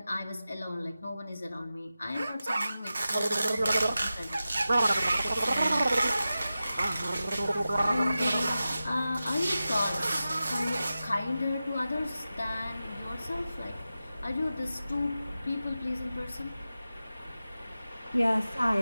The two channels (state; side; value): inverted; both; correlation -0.93